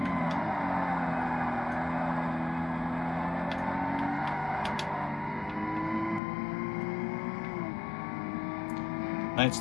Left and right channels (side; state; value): right; drops out; at 6.2 s